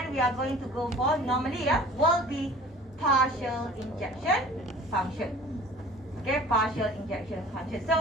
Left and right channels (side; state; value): both; normal; correlation 0.46